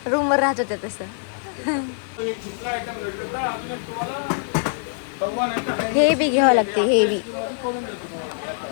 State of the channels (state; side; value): silent; right; digital silence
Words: रूमवर राहत होत्या तसं। हे बी घ्यावं लागते, हे बी